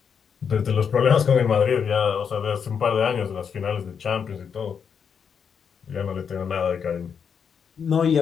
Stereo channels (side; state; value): right; quieter; 6.9 dB